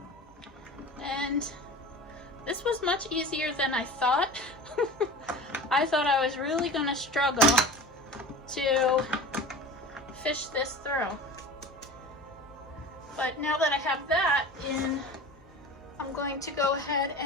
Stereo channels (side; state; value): both; normal; correlation 0.35